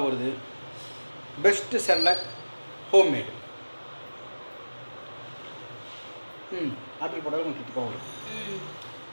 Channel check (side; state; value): both; inverted; correlation -1.00